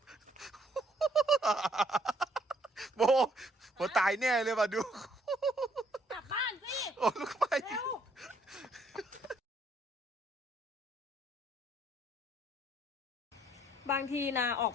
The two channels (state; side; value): normal; both; correlation 0.67